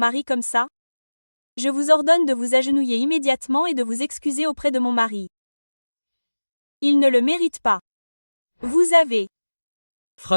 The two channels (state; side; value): inverted; both; correlation -1.00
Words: comme ça? Je vous ordonne de vous agenouiller immédiatement et de vous excuser auprès de mon mari. Il ne le mérite pas. Vous avez